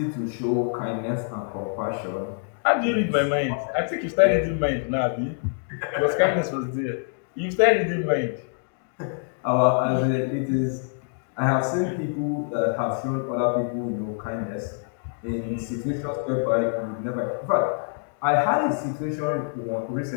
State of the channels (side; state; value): right; silent; digital silence